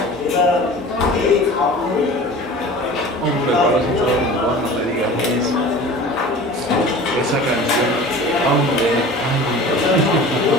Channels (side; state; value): both; normal; correlation 0.40